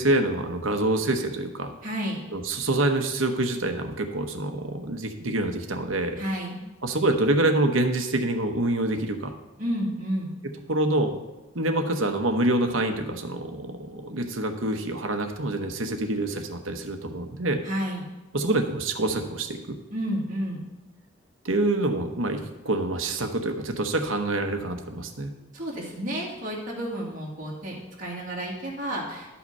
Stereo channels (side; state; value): both; normal; correlation 0.26